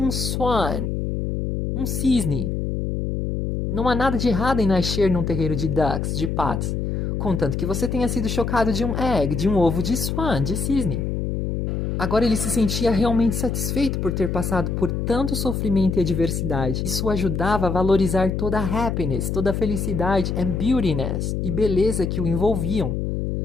um cisne. Não há nada de errado em nascer num terreiro de ducks, de patos, contanto que você tenha sido chocado de um ovo de cisne. Agora ele se sentia realmente satisfeito por ter passado por tanto sofrimento e adversidade. Isso o ajudava a valorizar toda a happiness, toda a felicidade and beautiness e beleza que o envolviam.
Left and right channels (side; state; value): left; noise; hum, 1 dB below the sound